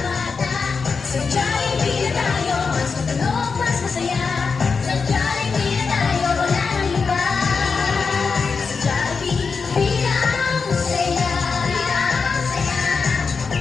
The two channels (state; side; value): quieter; right; 5.1 dB